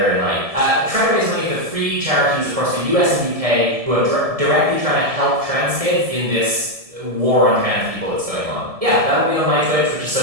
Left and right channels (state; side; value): late; left; 1.7 ms